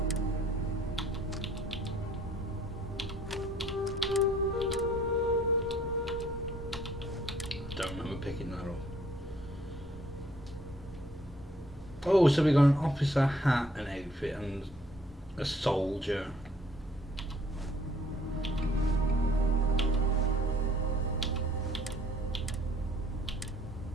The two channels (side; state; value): both; normal; correlation 0.61